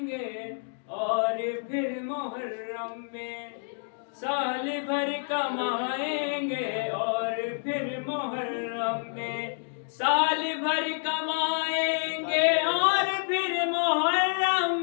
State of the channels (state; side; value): silent; right; digital silence